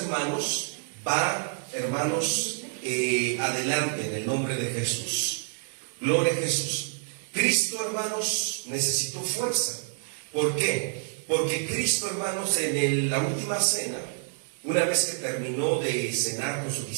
va, hermanos, adelante en el nombre de Jesús. Gloria a Jesús. Cristo, hermanos, necesitó fuerza. ¿Por qué? Porque Cristo, hermanos, en la última cena, una vez que terminó de cenar con sus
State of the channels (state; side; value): silent; left; 59 dB below the other